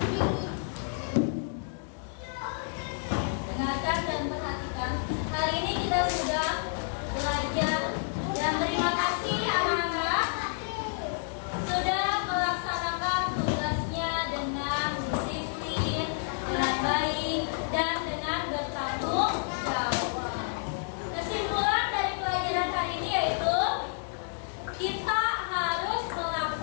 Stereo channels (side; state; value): right; silent; digital silence